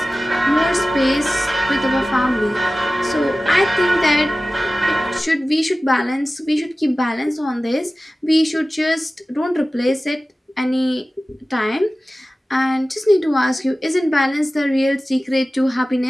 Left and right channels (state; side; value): normal; both; correlation 0.96